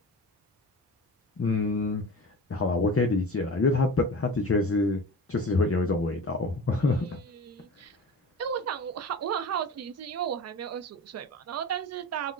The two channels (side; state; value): both; normal; correlation 0.33